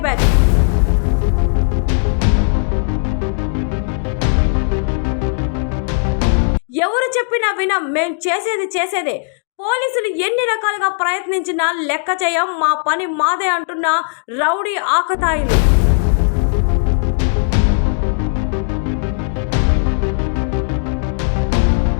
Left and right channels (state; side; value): silent; right; digital silence